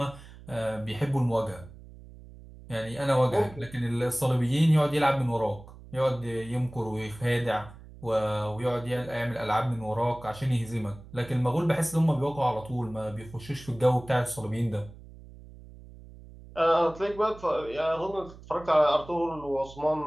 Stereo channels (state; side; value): noise; right; hum, 18 dB below the sound